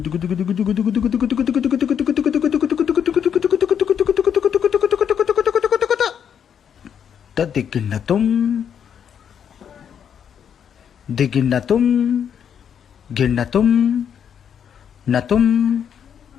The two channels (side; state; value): right; quieter; 8.2 dB